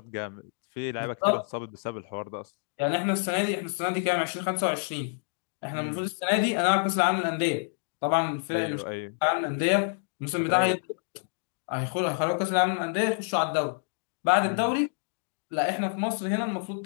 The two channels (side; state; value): right; silent; 59 dB below the other